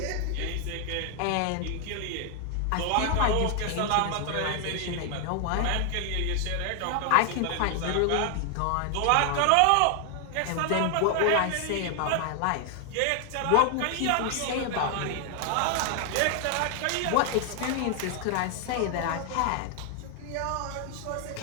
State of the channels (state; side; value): different; both; correlation 0.00